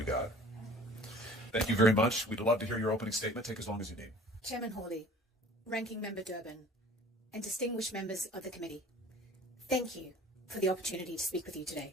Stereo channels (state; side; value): normal; both; correlation 0.47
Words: God. Thank you very much. We'd love to hear your opening statement. Take as long as you need. Chairman Hawley, Ranking Member Durbin, and distinguished members of the committee, thank you for the opportunity to speak with you